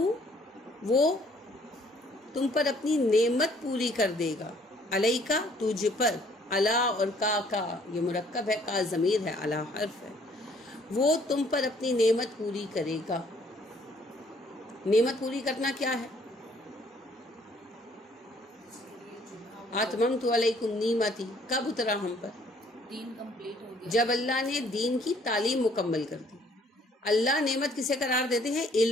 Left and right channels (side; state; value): both; normal; correlation 0.61